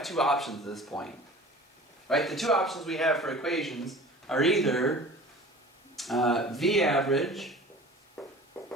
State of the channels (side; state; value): both; normal; correlation 0.42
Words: two options at this point. Right? The two options we have for equations are either V average